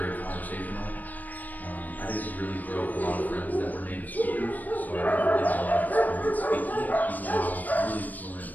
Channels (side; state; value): right; late; 0.082 ms